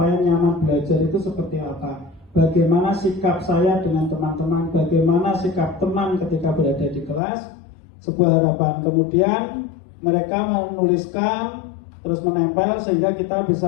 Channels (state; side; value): drops out; right; at 7.2 s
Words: nyaman belajar itu seperti apa? Bagaimana sikap saya dengan teman-teman? Bagaimana sikap teman ketika berada di kelas? Sebuah harapan. Kemudian mereka menuliskan terus menempel sehingga kita